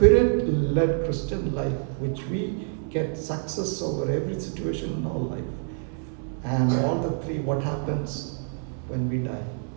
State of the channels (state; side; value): silent; left; digital silence